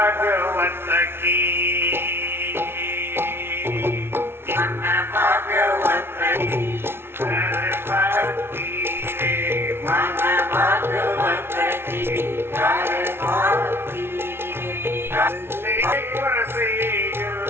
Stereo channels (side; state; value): left; late; 0.12 ms